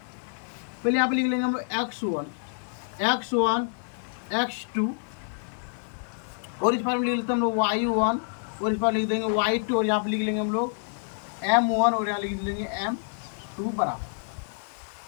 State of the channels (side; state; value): right; silent; digital silence